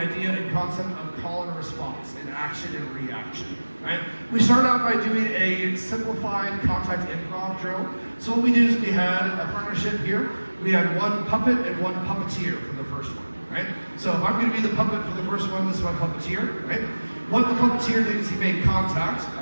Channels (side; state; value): both; inverted; correlation -1.00